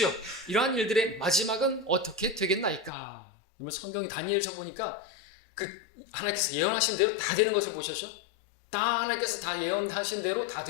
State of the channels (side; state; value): right; drops out; at 2.9 s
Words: 이러한 일들의 마지막은 어떻게 되겠나이까. 여러분, 성경이 다니엘서 보니까 그 하나님께서 예언하신 대로 다 되는 것을 보셨죠? 다 하나님께서 다 예언하신 대로 다